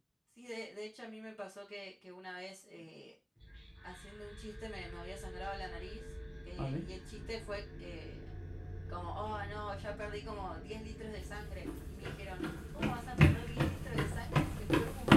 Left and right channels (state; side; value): identical; both; correlation 1.00